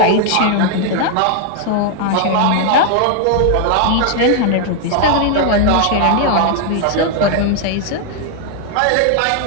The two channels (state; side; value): different; both; correlation 0.00